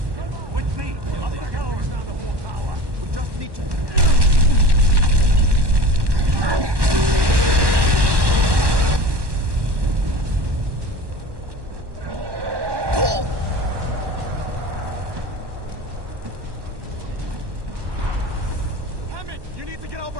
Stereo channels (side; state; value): left; late; 1.2 ms